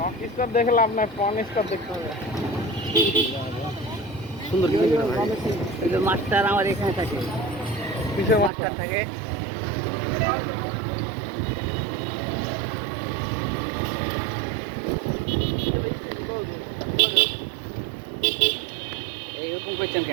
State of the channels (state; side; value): drops out; left; at 8.5 s